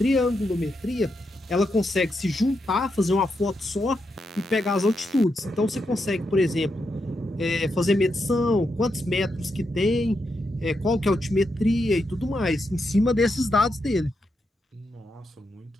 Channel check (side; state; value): both; normal; correlation 0.83